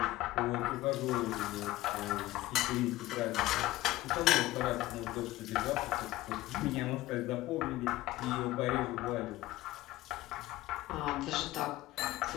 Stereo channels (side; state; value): right; quieter; 16.9 dB